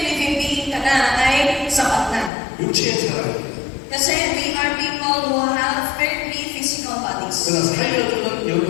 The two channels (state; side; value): drops out; right; at 2.3 s